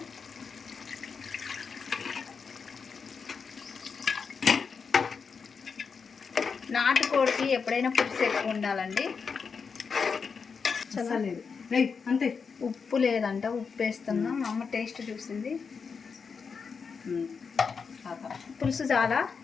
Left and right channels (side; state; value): right; quieter; 5.6 dB